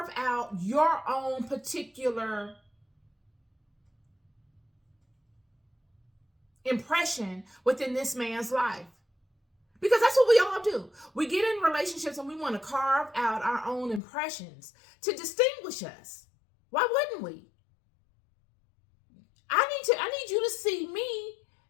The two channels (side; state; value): right; drops out; at 14.0 s